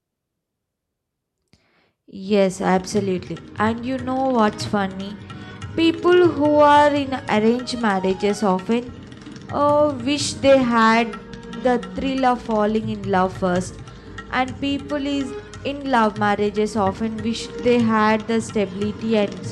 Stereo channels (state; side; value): identical; both; correlation 1.00